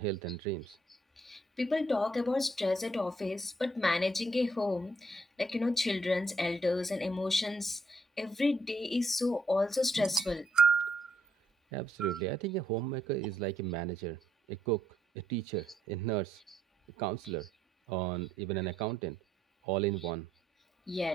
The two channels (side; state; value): both; normal; correlation 0.71